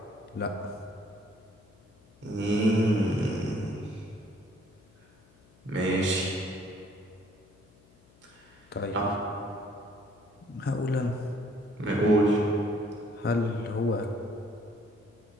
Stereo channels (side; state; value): left; noise; hum, 28 dB below the sound